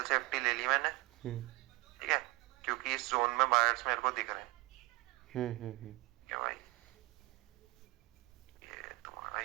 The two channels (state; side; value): quieter; left; 22.2 dB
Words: सेफ्टी ले ली मैंने। हम्म ठीक है, क्योंकि इस जोन में बायर्स मेरे को दिख रहे हैं। हम्म। क्या भाई, ये तुम्हारा